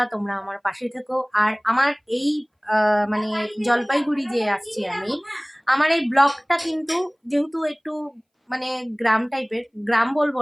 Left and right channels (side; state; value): both; identical; correlation 1.00